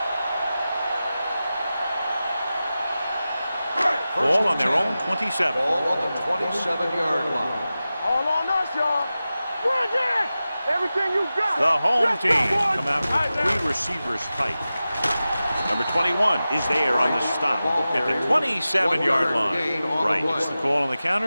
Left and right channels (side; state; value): both; inverted; correlation -0.94